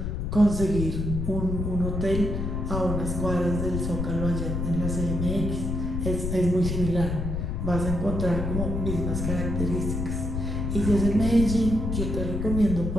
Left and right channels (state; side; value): noise; left; rumble, 2 dB below the sound